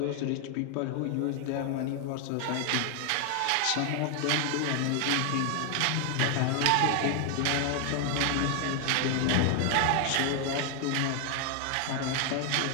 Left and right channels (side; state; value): both; different; correlation 0.00